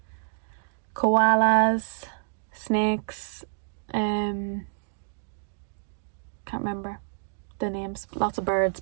koalas, snakes, can't remember the names. Lots of birds,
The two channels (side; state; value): left; silent; digital silence